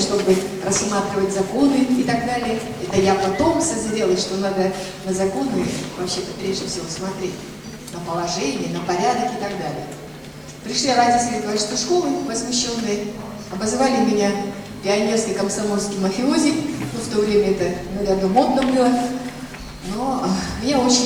рассматривать законы и так далее. Это я потом созрела, что надо на законы вообще-то прежде всего смотреть. На положение, на порядок и так далее. Пришли родители 26-й школы, возмущенные, обозвали меня пионерский комсомольский мафиози. Ну, в то время это, наверное, модно было. Но меня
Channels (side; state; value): both; identical; correlation 1.00